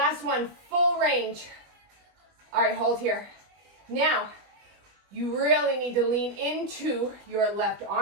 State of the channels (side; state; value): left; late; 20 ms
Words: one, full range. All right, hold here. Now, you really need to lean into your left